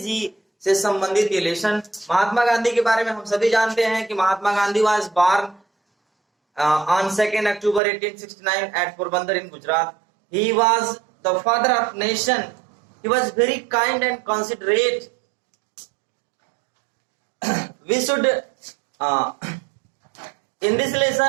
से संबंधित ये लेसन। महात्मा गांधी के बारे में हम सभी जानते हैं कि Mahatma Gandhi was born on 2nd October 1869 at Porbandar in Gujarat. He was the father of nation. He was very kind and considerate. We should in this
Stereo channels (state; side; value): drops out; left; at 7.8 s